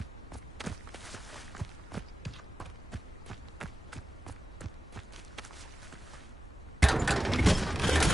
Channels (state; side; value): normal; both; correlation 0.93